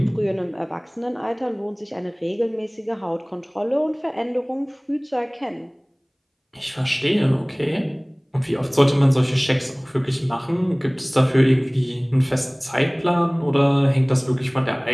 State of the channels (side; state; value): both; identical; correlation 1.00